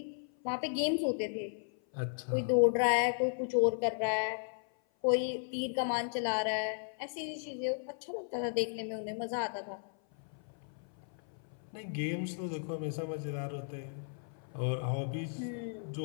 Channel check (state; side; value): silent; right; 54 dB below the other